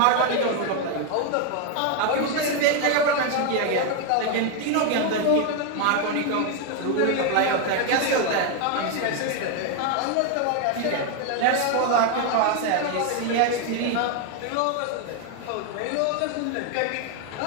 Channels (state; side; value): different; both; correlation 0.01